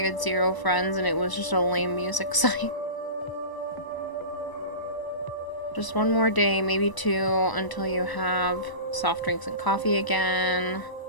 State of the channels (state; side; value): late; right; 1.0 ms